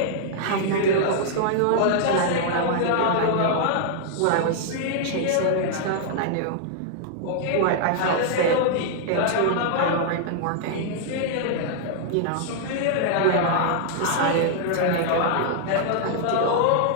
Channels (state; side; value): different; both; correlation -0.01